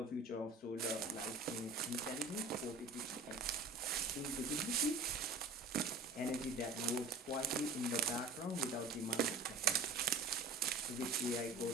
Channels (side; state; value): left; quieter; 3.4 dB